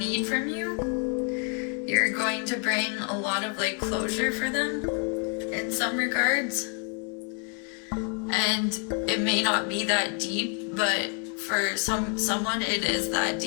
from you. You're going to bring a lot of like closure for them in some regards. And it may not be that deep, but for someone it is that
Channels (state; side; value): quieter; right; 37.9 dB